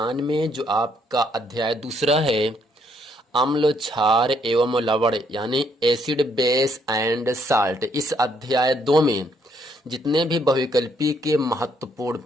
में जो आपका अध्याय दूसरा है, अम्ल क्षार एवं लवण यानी एसिड बेस एंड साल्ट। इस अध्याय 2 में जितने भी बहुविकल्पी के महत्वपूर्ण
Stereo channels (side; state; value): both; normal; correlation 0.70